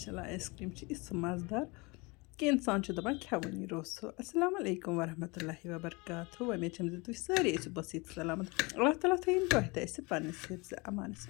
आइसक्रीम मज़ेदार कि इंसान दपान खेवनी रोसो अस्सलाम वालेकुम वरहमतुल्लाहि वबरकातुहू उम्मीद छम तुम सारे बसीत सलामत अल्लाह ताला थीन तुह तह पन्निस हिफ्ज़ अमानस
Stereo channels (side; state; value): right; quieter; 26.8 dB